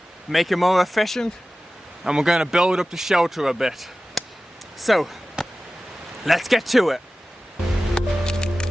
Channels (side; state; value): both; normal; correlation 0.96